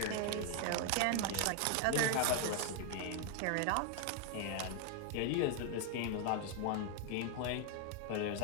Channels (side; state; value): both; different; correlation 0.00